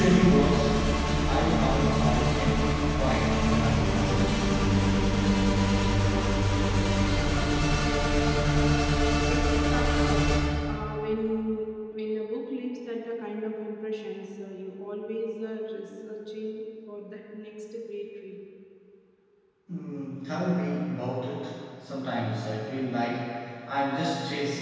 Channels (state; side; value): identical; both; correlation 1.00